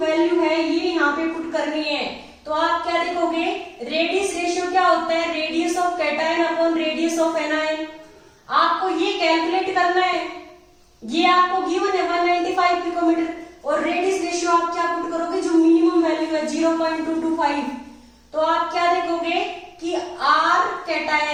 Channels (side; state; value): both; identical; correlation 1.00